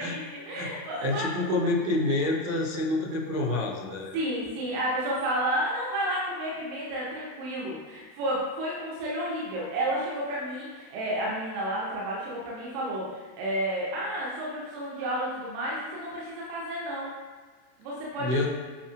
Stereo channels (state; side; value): late; left; 32 ms